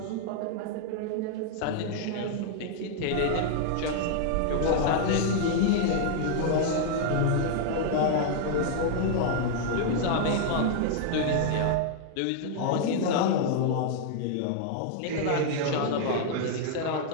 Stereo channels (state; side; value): different; both; correlation -0.01